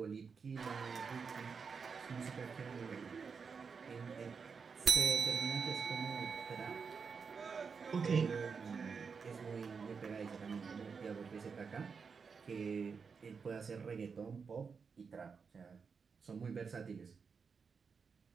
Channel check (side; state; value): left; quieter; 5.6 dB